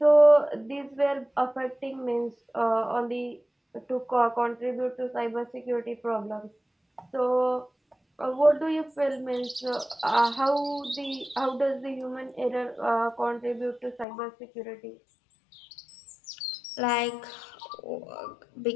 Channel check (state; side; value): drops out; right; at 14.1 s